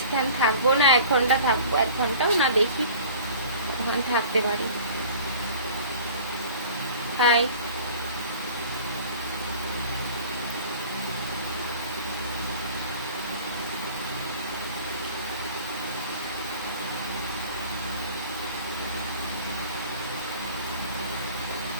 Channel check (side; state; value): both; inverted; correlation -0.44